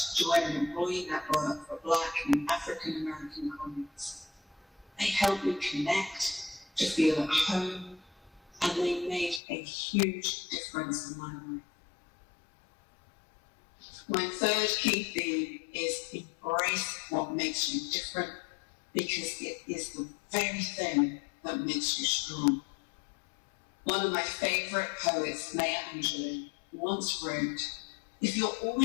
join an employee network for Black and African American colleagues. They helped me connect, to feel at home, and they made a huge difference in my life. My third key theme is embrace what makes you different, because it is the very thing that makes you strong. One of my favorite poets, Maya Angelou, once wrote, "If you're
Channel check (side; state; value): right; drops out; at 9.4 s